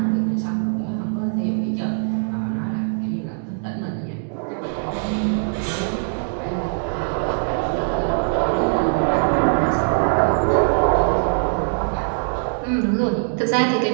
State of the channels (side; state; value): left; silent; digital silence